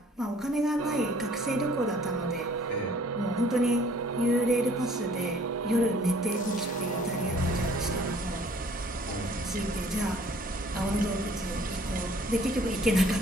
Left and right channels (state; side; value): normal; both; correlation 0.56